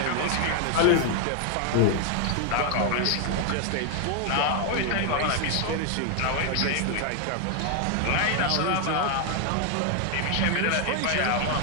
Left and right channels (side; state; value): both; different; correlation 0.01